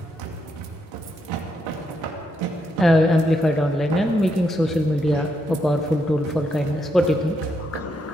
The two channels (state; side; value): normal; both; correlation 0.79